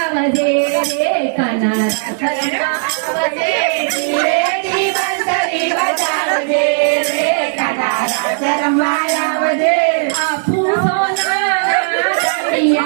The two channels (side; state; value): left; silent; digital silence